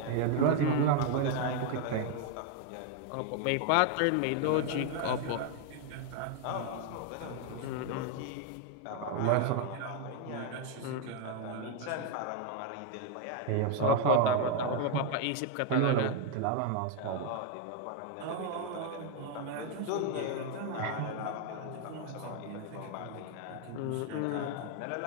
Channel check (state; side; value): different; both; correlation 0.01